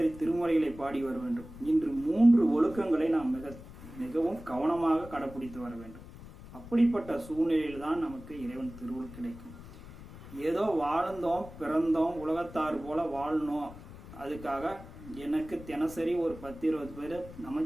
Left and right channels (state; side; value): noise; left; rumble, 16 dB below the sound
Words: திருமுறைகளை பாடி வர வேண்டும். இன்று 3 ஒழுக்கங்களை நாம் மிகவும் கவனமாக கடைபிடித்து வர வேண்டும். அப்படிப்பட்ட சூழ்நிலையில் தான் நமக்கு இறைவன் திருவருள் கிடைக்கும். ஏதோ வாழ்ந்தோம் பிறந்தோம் உலகத்தார் போல வாழணும், அதுக்காக எனக்கு தினசரி ஒரு 10-20 பேர்